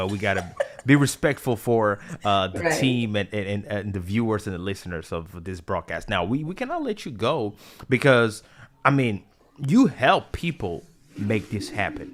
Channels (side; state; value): both; identical; correlation 1.00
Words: we gotta be respectful for the Right. team and the viewers and the listeners of this broadcast. Now, we cannot let you go because, I mean, you help people make this happen.